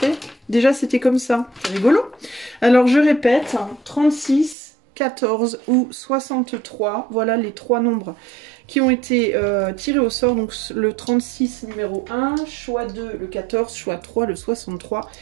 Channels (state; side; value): drops out; left; at 4.5 s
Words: déjà c'était comme ça. C'est rigolo. Alors je répète, 36, 14 ou 63, voilà les 3 nombres qui ont été tirés au sort. Donc le 36 numéro 1, choix 2 le 14, choix 3 le 63.